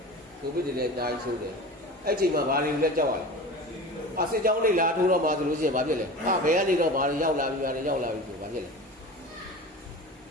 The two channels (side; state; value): both; normal; correlation 0.33